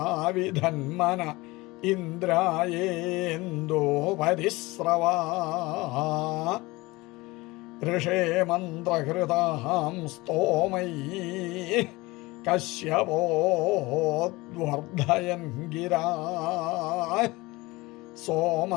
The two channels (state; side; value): quieter; right; 21.8 dB